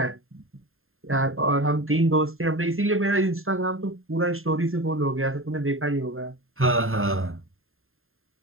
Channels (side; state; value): left; late; 0.61 ms